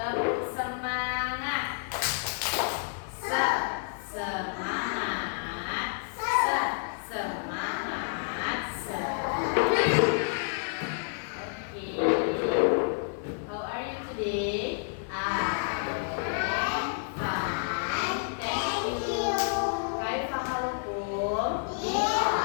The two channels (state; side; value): silent; right; digital silence